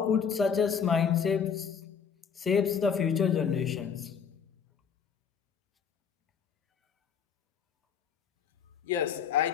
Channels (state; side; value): quieter; right; 6.9 dB